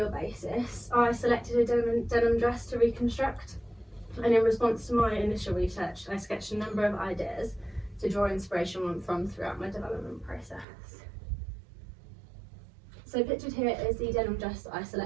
basis, I selected a denim dress to reconstruct. And in response to my initial research, I sketched a number of ideas to draw inspiration from throughout my development process. So pictured here is the denim dress that I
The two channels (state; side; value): drops out; left; at 10.7 s